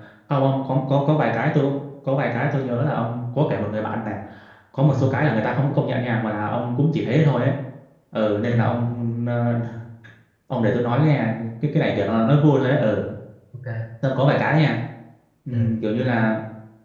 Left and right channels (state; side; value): identical; both; correlation 1.00